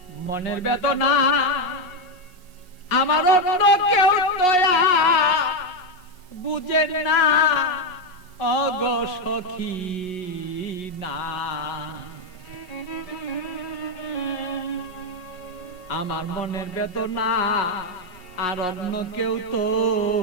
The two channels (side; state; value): right; late; 5.5 ms